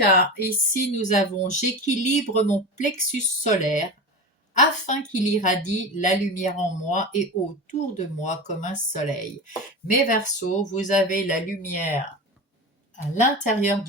ici, nous avons « J'équilibre mon plexus solaire afin qu'il irradie la lumière en moi et autour de moi comme un soleil. » Mes Verseaux, vous avez la lumière à l'intérieur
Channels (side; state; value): both; normal; correlation 0.26